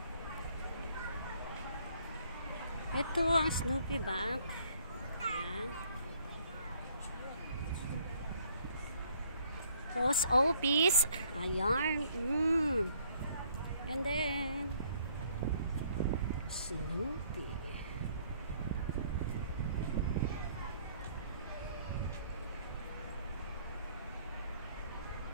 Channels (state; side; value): inverted; both; correlation -0.62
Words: Ito ang Snoopy Bank. Ayan. Post office. Ayan. And then Snoopy.